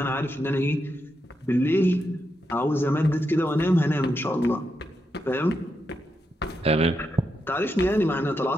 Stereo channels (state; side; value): normal; both; correlation 0.84